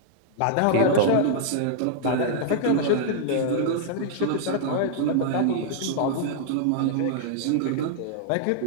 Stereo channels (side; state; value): both; different; correlation -0.01